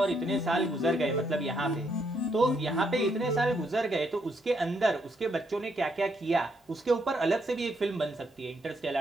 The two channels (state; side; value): normal; both; correlation 0.75